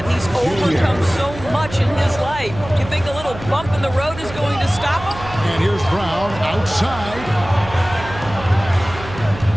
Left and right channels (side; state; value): right; noise; hum, 13 dB below the sound